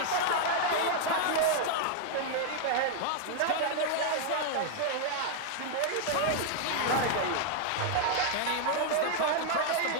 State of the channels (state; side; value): different; both; correlation -0.01